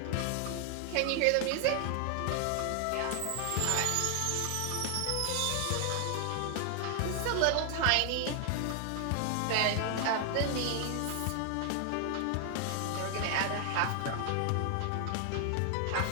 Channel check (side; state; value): both; different; correlation 0.00